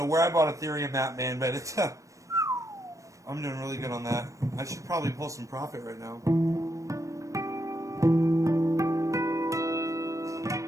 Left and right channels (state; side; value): late; left; 0.16 ms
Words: where I bought Ethereum at, man, but it's, I'm doing really good on that. I should probably pull some profit right now.